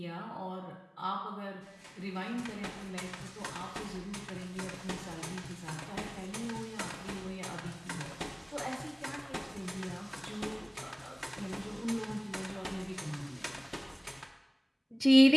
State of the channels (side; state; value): both; identical; correlation 1.00